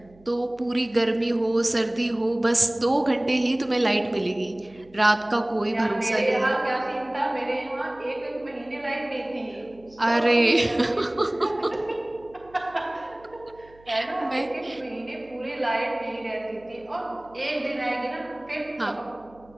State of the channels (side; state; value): right; noise; hum, 27 dB below the sound